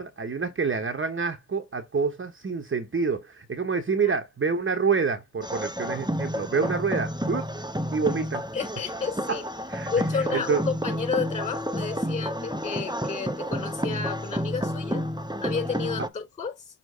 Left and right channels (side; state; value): both; normal; correlation 0.34